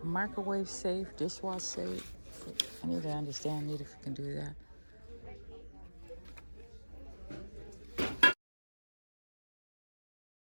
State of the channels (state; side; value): inverted; both; correlation -1.00